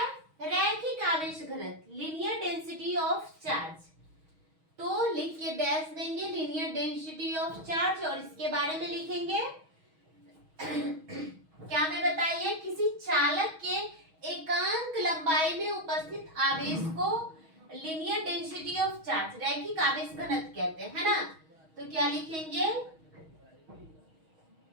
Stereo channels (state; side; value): late; left; 6.3 ms